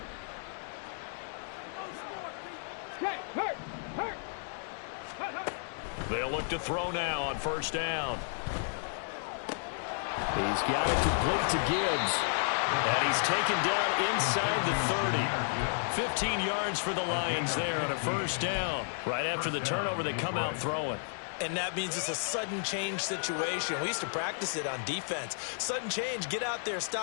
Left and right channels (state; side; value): silent; right; 56 dB below the other